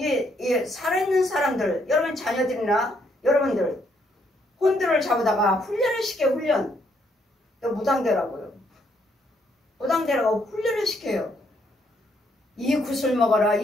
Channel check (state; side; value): normal; both; correlation 0.72